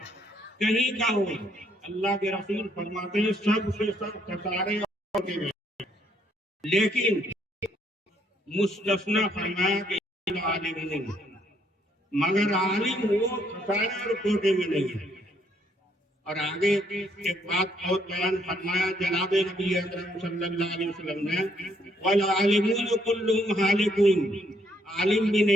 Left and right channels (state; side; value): normal; both; correlation 0.70